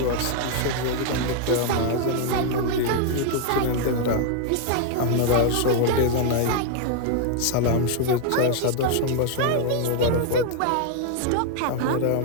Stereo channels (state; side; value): different; both; correlation 0.00